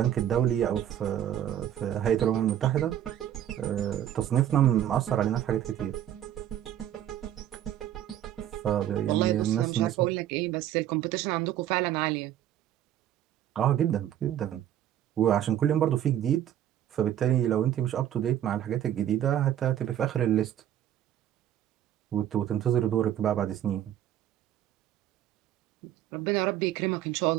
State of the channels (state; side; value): quieter; left; 11.3 dB